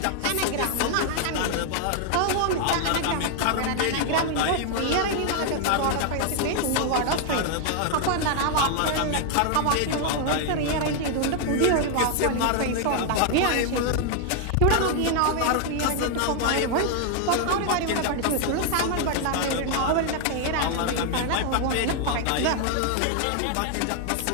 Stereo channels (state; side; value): different; both; correlation 0.00